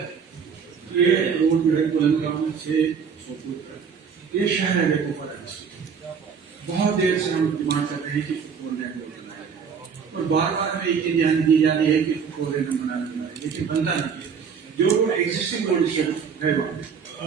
ये रोड जो है कुलंगाम से सोपुर तक ये शहर है कोफर बहुत देर से हम डिमांड कर रहे हैं कि फोर लेन रोड बनाया जाए और बार बार हमें एक ध्यान दी जा रही है कि फोर लेन बनाना है, लेकिन बनता नहीं है। जो एग्जिस्टिंग रोड है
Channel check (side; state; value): left; quieter; 6.5 dB